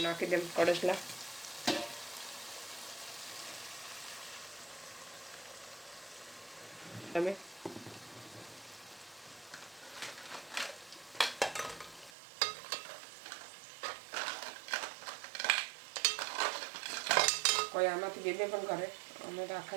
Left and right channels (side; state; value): left; drops out; at 12.1 s